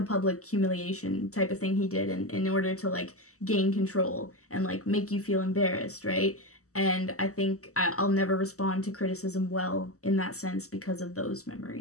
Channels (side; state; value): right; late; 0.65 ms